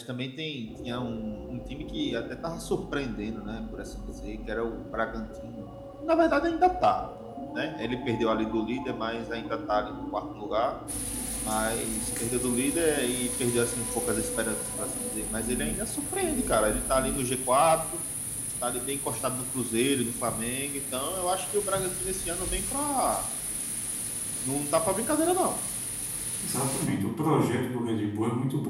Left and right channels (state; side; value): identical; both; correlation 1.00